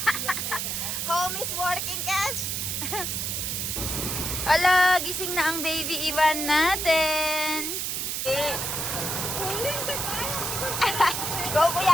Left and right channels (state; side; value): noise; right; hiss, 1 dB below the sound